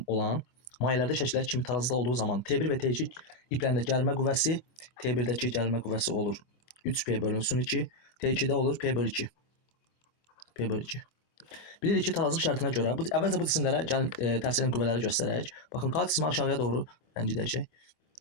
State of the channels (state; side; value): late; right; 25 ms